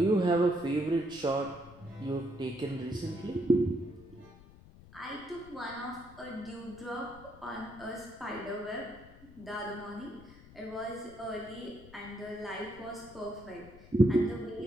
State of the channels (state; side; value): noise; left; rumble, 20 dB below the sound